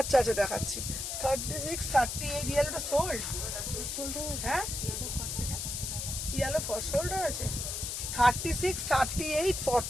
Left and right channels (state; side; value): noise; left; hiss, 4 dB below the sound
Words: আচ্ছা দেখাচ্ছি, 36, 38 ইয়েলোটা সোল্ড, হ্যাঁ ইয়েলো ফর সোল্ড হয়েছে, 36, 38,